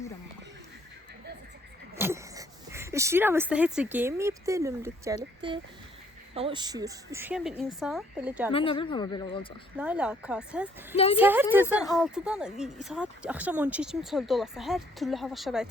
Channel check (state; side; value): normal; both; correlation 0.64